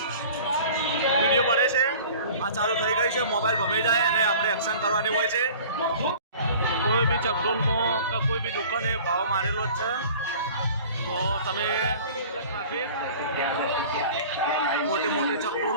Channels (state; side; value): inverted; both; correlation -0.44